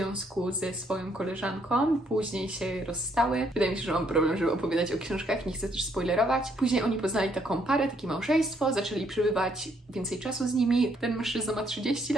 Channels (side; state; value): both; normal; correlation 0.70